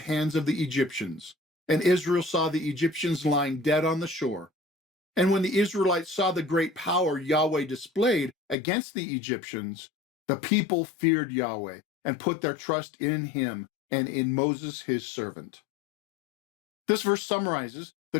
of the Egyptians, and Israel saw the Egyptians lying dead on the shore. And when the Israelites saw the great power Yahweh displayed against the Egyptians, the people feared Yahweh and put their trust in him and in Moses, his servant." This verse summarizes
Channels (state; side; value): drops out; right; at 8.6 s